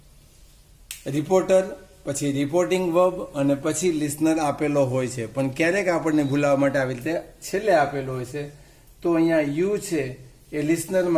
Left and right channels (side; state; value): both; identical; correlation 1.00